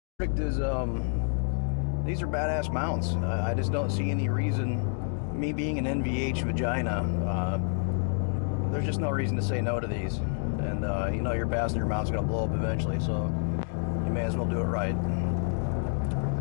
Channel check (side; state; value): right; silent; 59 dB below the other